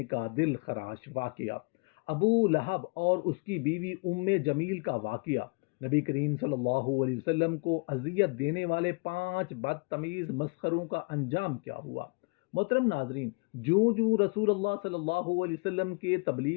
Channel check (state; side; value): quieter; right; 31.4 dB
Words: کا دل خراش واقعہ، ابو لہب اور اس کی بیوی ام جمیل کا واقعہ، نبی کریم صلی اللہ علیہ وسلم کو اذیت دینے والے 5 بدتمیز مسخروں کا انجام کیا ہوا۔ محترم ناظرین، جوں رسول اللہ صلی اللہ علیہ وسلم کے